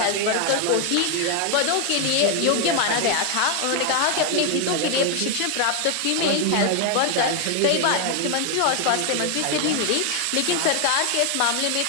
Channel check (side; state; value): both; different; correlation 0.01